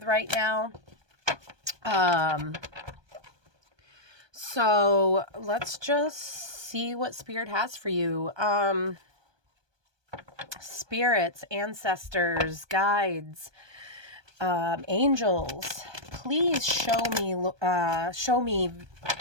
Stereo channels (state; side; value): late; left; 1.2 ms